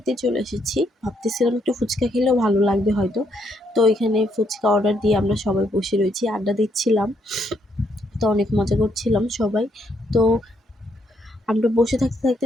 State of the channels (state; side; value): normal; both; correlation 0.74